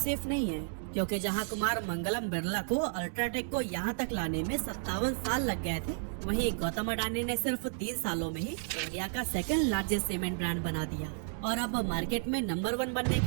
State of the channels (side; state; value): left; silent; digital silence